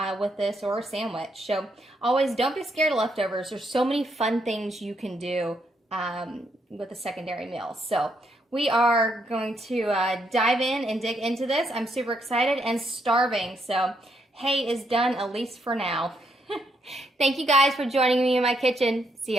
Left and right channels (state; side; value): normal; both; correlation 0.76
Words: with this, or a sandwich. So always don't be scared of leftovers. There's so many fun things you can do with a secondary meal. So we are going to dive in and dig into this. I'm super excited and starving. So hay is done, at least for now. Thank you guys for joining me in my kitchen. See